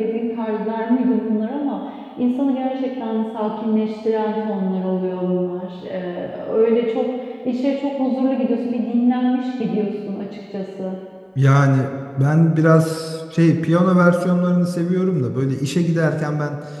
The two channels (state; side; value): identical; both; correlation 1.00